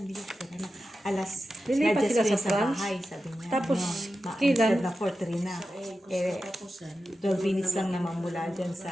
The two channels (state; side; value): normal; both; correlation 0.92